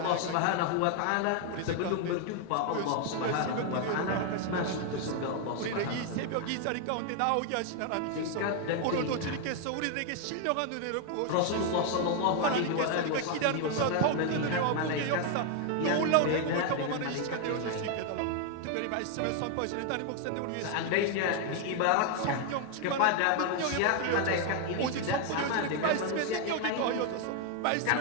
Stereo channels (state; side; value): different; both; correlation 0.00